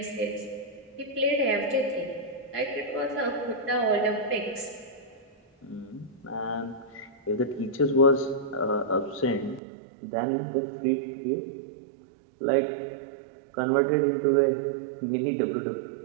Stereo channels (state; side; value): drops out; left; at 9.6 s